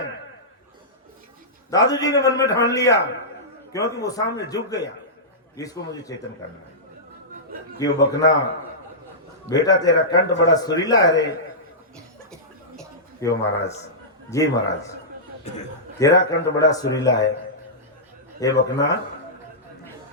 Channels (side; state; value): both; normal; correlation -0.16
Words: दादू जी ने मन में ठान लिया, क्योंकि वो सामने झुक गया, इसको मुझे चेतन करना है। क्यों बकना बेटा तेरा कंठ बड़ा सुरीला है रे। क्यों महाराज जी, महाराज तेरा कंठ बड़ा सुरीला है। ये बकना